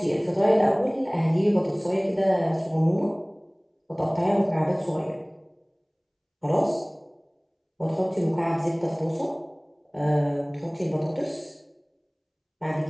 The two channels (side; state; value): both; identical; correlation 1.00